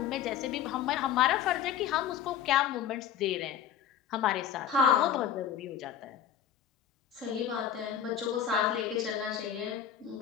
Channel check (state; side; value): quieter; right; 9.0 dB